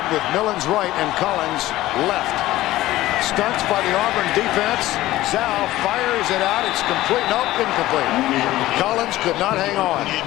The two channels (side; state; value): right; quieter; 16.1 dB